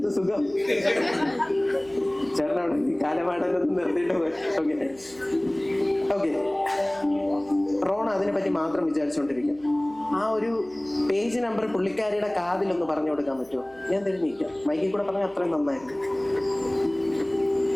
സുഖം. ചേട്ടനവിടെ ഈ കാലപാടലൊന്നും നിർത്തിയിട്ട് പോയി. ഓക്കെ ഓക്കെ, റോണ അതിനെ പറ്റി മാത്രം വിചാരിച്ചുകൊണ്ടിരിക്കാം. ആ ഒരു പേജ് നമ്പർ പുള്ളിക്കാരിയുടെ കാതിലൊന്ന് പറഞ്ഞു കൊടുക്കാൻ പറ്റുമോ? ഞാൻ തിരിഞ്ഞിരിക്കാം, മൈക്കിൽ കൂടെ പറഞ്ഞാൽ അത്രയും നന്നായിരുന്നു.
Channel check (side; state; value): right; noise; hum, 27 dB below the sound